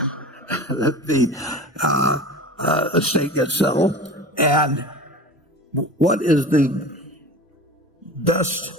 the estate gets settled. And what is the best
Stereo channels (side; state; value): both; normal; correlation 0.35